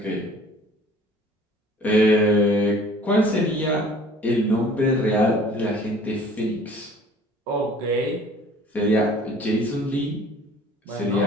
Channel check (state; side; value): normal; both; correlation 0.50